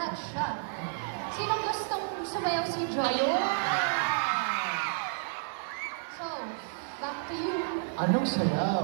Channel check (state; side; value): silent; left; digital silence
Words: siya. Sinong gustong sumayaw si Joy? Ayun! So, back to you. Anong sayaw?